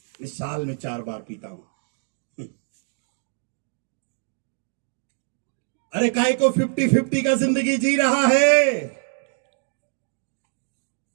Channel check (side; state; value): left; silent; 61 dB below the other